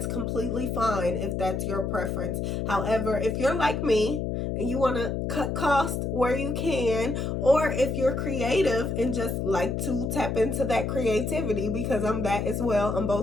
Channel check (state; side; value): noise; left; hum, 1 dB below the sound